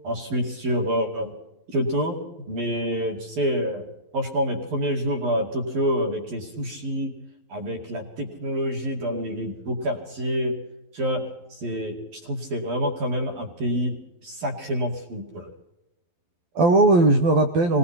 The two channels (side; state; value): left; late; 12 ms